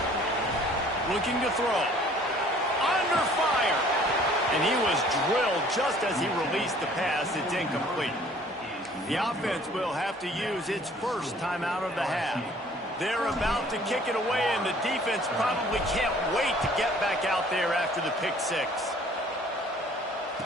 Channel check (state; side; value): normal; both; correlation 0.55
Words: Looking to throw. Under fire. And he was drilled just as he released the pass. It's incomplete. The offense will have to use its first timeout of the half. They're about to kick it away, and the defense probably can't wait to get back out there after the pick six.